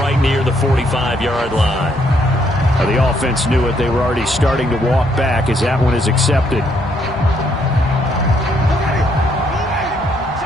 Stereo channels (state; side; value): normal; both; correlation 0.71